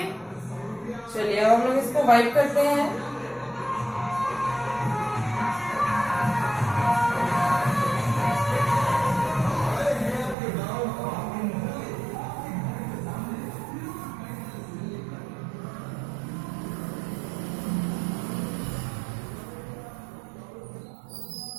चलिए अब हम लोग इसको वाइप करते हैं।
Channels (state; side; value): drops out; left; at 10.4 s